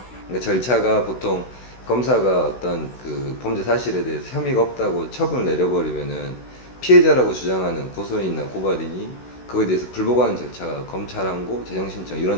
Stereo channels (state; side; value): late; right; 16 ms